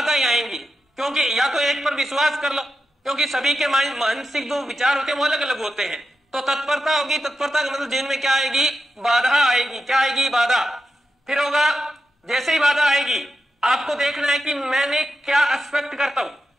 आएंगी, क्योंकि या तो एक पर विश्वास कर लो, क्योंकि सभी के मानसिक जो विचार होते हैं वो अलग अलग होते हैं। तो तत्परता होगी, तत्परता का मतलब जीवन में क्या आएगी? बाधा आएगी। क्या आएगी? बाधा। फिर होगा, जैसे ही बाधा आएगी आपको देखना है कि मैंने क्या एक्सपेक्ट करता हूं,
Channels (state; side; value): normal; both; correlation 0.89